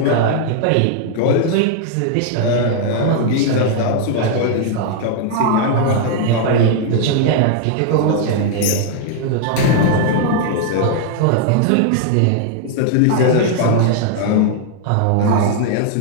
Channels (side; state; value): both; different; correlation 0.00